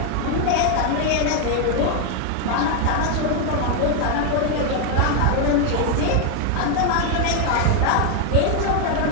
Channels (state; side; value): different; both; correlation 0.01